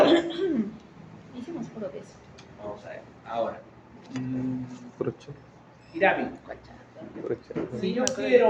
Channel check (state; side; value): identical; both; correlation 1.00